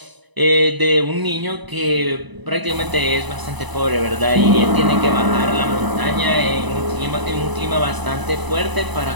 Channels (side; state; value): left; late; 1.0 ms